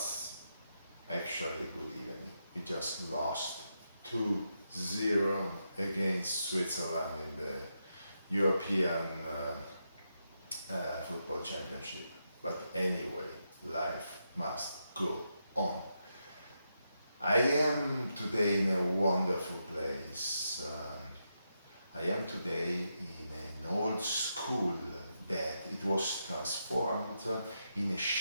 actually a good evening. We just lost 2-0 against Switzerland in the European Football Championship. But anyway, life must go on. I am today in a wonderful place. I am today in an old school that it was transformed in a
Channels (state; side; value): inverted; both; correlation -0.84